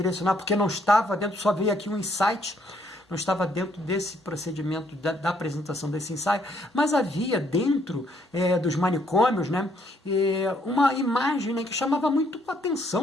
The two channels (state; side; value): normal; both; correlation 0.69